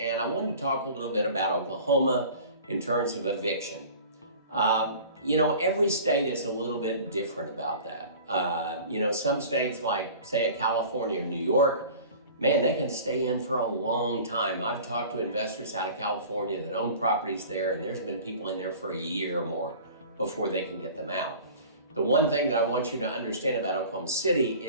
I wanted to talk a little bit about Oklahoma in terms of eviction. Every state is a little bit different about that. Some states like, say, California or New York, man, they can stay in for a long time. I've talked to investors out of California that own properties there, and there's been people in there for a year or more before they can get them out. The one thing that I want you to understand about Oklahoma City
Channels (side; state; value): both; inverted; correlation -0.42